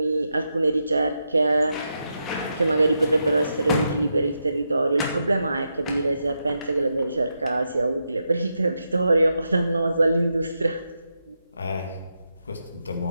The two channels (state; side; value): inverted; both; correlation -0.85